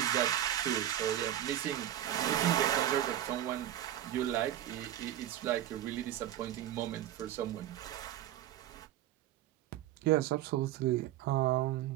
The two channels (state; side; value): quieter; left; 12.5 dB